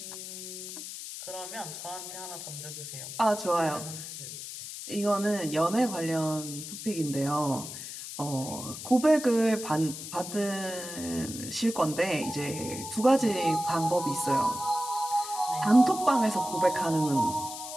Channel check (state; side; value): noise; left; hiss, 9 dB below the sound